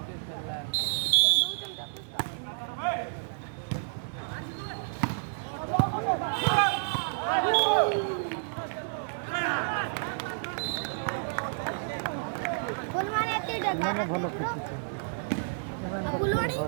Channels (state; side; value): silent; left; digital silence